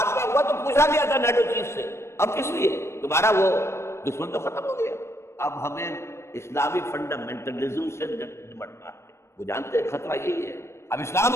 ہوا تو پوچھا گیا تھا نیٹو چیف سے اب کس لیے؟ تمہارا وہ دشمن تو ختم ہو گیا. اب ہمیں اسلامی فنڈامنٹلزم سے نمٹنا ہے. وہ جانتے ہیں خطرہ یہی ہے. اب اسلام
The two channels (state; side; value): late; right; 0.13 ms